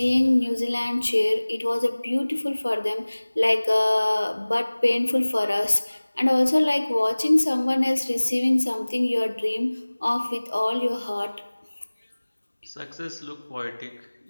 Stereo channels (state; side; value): inverted; both; correlation -1.00